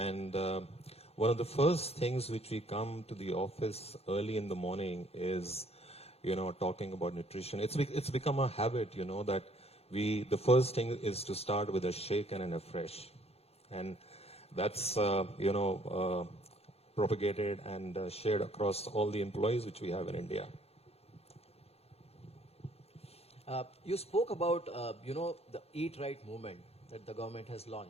one of the first things which we come to the office early in the morning is, talking about nutrition. It's become a habit, that the first thing is to start with a shake and a fresh. And that's, propagated and shared across all the employees which we have in India. You spoke about, the Eat Right movement that the government has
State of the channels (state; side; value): late; right; 0.29 ms